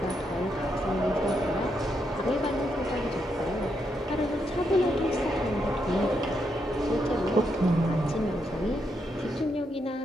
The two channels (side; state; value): both; normal; correlation 0.80